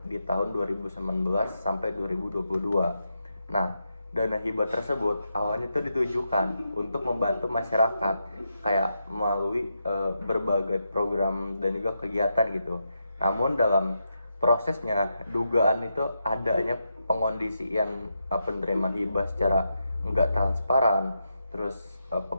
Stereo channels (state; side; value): inverted; both; correlation -0.84